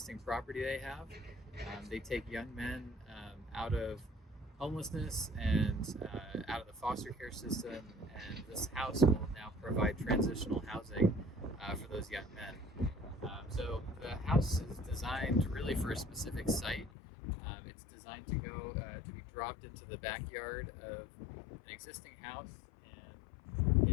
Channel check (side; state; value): right; drops out; at 16.9 s